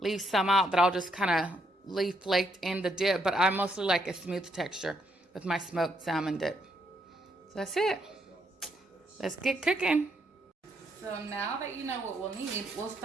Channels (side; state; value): both; normal; correlation 0.75